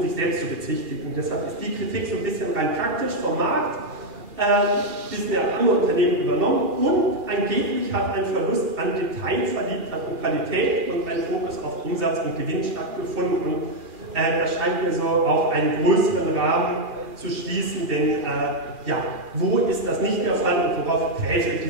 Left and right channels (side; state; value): left; late; 2.4 ms